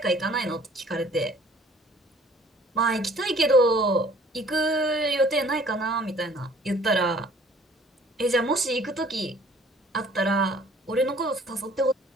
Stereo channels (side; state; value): both; normal; correlation 0.54